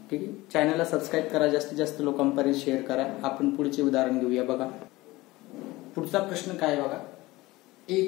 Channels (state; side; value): quieter; right; 19.8 dB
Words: ठीक आहे, चॅनलला सबस्क्राईब करा, जास्तीत जास्त लोकांपर्यंत शेअर करा. आपण पुढचे उदाहरण घेऊया बघा. पुढचा प्रश्न काय बघा.